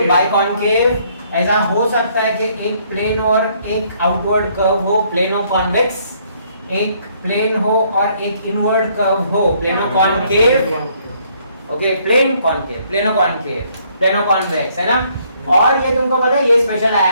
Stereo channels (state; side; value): inverted; both; correlation -0.67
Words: बाइकॉन्केव। ऐसा हो सकता है कि एक प्लेन और एक आउटवर्ड कर्व हो, प्लेनो कॉन्वेक्स, एक प्लेन हो और एक इनवर्ड कर्व हो, plano concave, okay. Plane concave, plano concave, plano convex, है ना। और ये तुमको पता है, ये स्पेशल